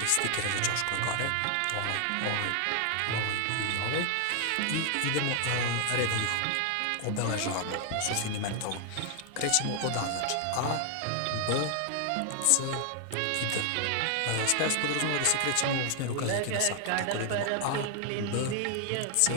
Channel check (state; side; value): different; both; correlation 0.00